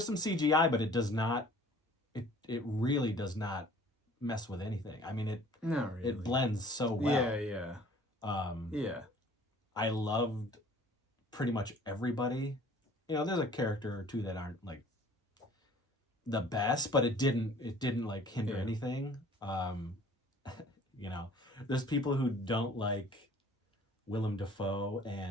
some CGI, but it does not. It really does not mess with anything. I mean, not really. It blends so well. Yeah. I loved pretty much everybody. You know, there's a character or two that aren't like the best, but it didn't like hinder anything. You know, there's people who don't like Willem Dafoe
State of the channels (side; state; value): both; normal; correlation 0.51